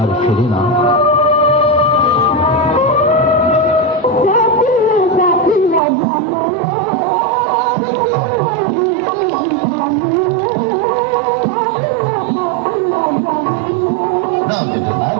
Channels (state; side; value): drops out; left; at 5.8 s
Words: আর ফেরে না।